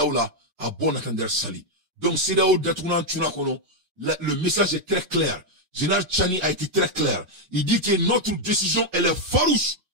la a bon attendre sali. Donc CEDEAO datuna tuna kono le message est très clair. Général Tchani a été très clair. Il dit que notre décision, elle est farouche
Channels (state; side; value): late; left; 5.5 ms